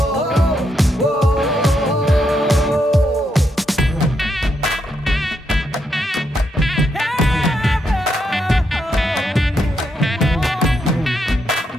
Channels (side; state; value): both; normal; correlation 0.79